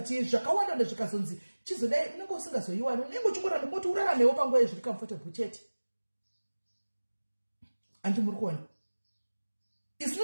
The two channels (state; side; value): inverted; both; correlation -1.00